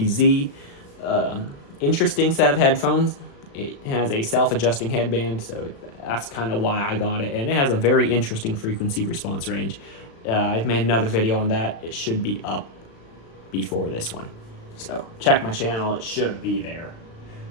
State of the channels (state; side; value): late; right; 36 ms